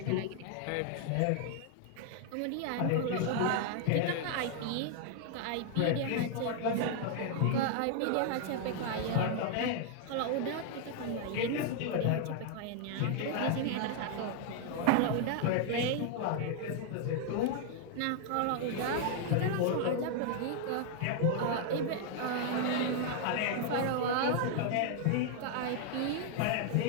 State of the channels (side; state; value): both; different; correlation 0.00